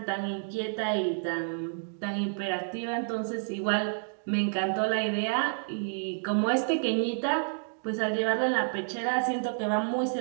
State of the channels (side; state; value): left; silent; digital silence